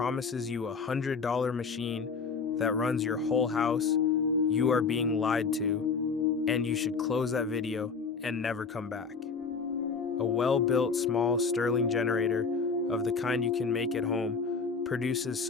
you $100 machine that runs your whole house, you are being lied to, and you should close that video and never come back. A well-built small Stirling generator of the kind you can make at home produces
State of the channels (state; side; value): quieter; right; 5.1 dB